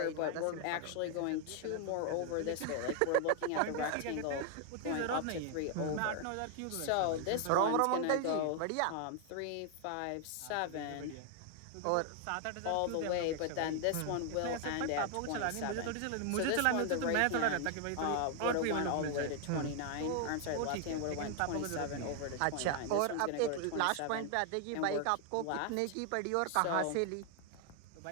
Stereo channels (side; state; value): both; different; correlation 0.00